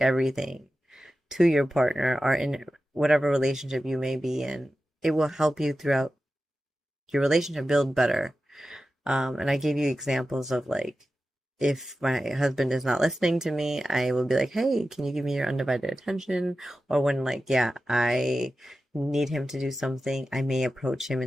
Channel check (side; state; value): both; normal; correlation 0.93